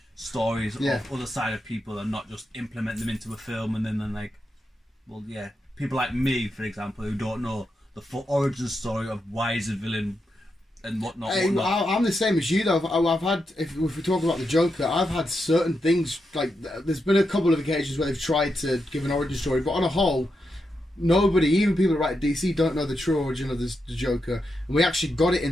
stories of other side of people and not just implement them into a film and then like, well, people like me, for example, who don't know the full origin story of why is a villain and whatnot. Hey, I'm the same as you though. I've had, if we talk about the Joker, I've had certain things like there's been a couple of occasions where they've tried to give an origin story, but on a whole, nobody, even people that write DC, don't know the true origin of the Joker, and we actually got it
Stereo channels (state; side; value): normal; both; correlation 0.85